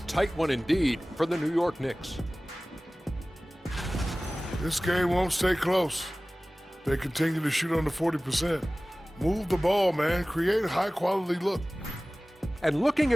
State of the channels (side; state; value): both; normal; correlation 0.98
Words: one indeed for the New York Knicks. This game won't stay close. They continue to shoot under 40%. Move the ball, man. Create a high-quality look. And looking